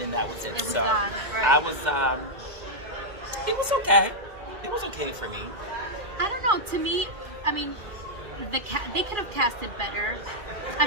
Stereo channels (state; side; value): late; left; 2.4 ms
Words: then that was it. It was so done. Right. I was. It was okay. It was okay for me. I don't know. To me, I mean, they could have casted better. I